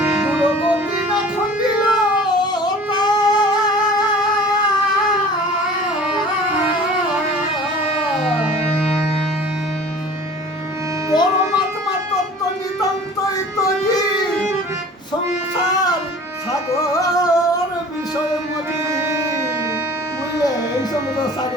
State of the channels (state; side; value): normal; both; correlation 0.45